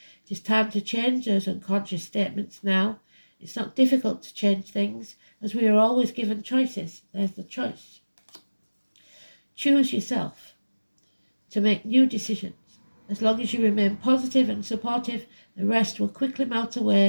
It is time to change those unconscious statements now. It's not difficult to change things, as we are always given choices. There's the choice. Choose yourself to make new decisions. As long as you remain positive and supportive, the rest will quickly melt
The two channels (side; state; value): both; inverted; correlation -1.00